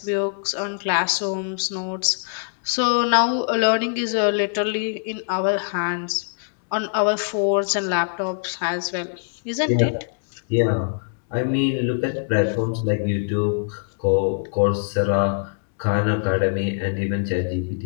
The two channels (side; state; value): right; silent; digital silence